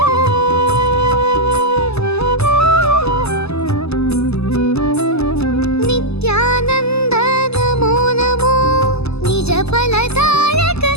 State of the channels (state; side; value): late; right; 0.79 ms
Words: नित्यानंद नमो नमो, निज फलदायक